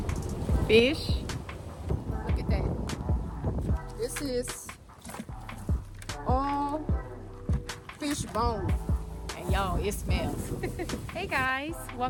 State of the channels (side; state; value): both; identical; correlation 1.00